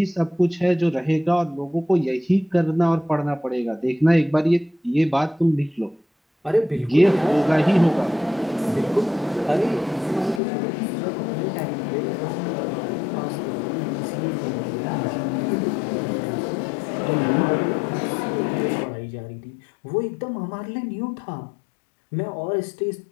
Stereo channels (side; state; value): right; drops out; at 10.4 s